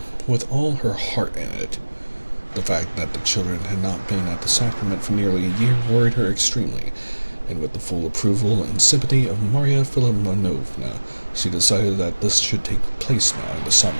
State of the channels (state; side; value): inverted; both; correlation -1.00